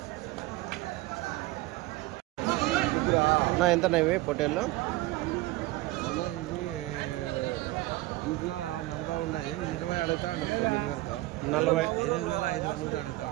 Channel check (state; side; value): quieter; left; 19.2 dB